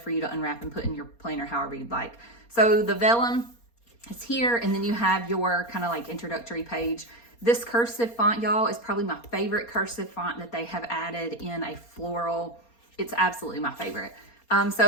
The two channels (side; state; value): right; late; 4.3 ms